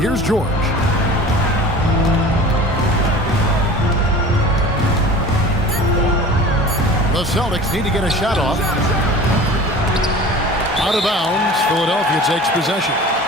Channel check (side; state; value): both; normal; correlation 0.39